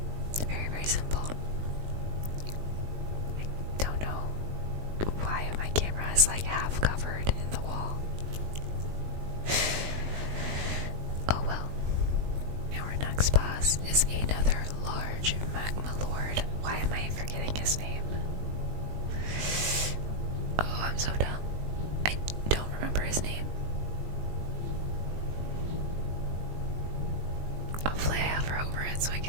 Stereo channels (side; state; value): left; late; 19 ms